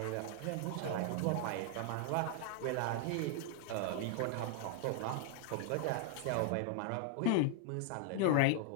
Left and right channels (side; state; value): both; different; correlation 0.00